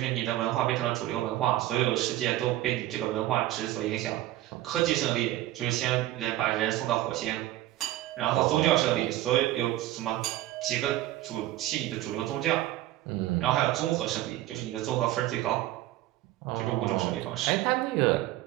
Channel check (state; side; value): quieter; left; 15.2 dB